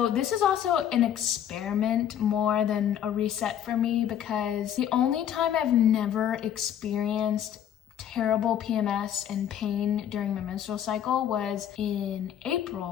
this is also an experiment more than a reset for me, because the only time I've never experienced terrible PMS and pain during my menstrual cycle was in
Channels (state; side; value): quieter; right; 10.0 dB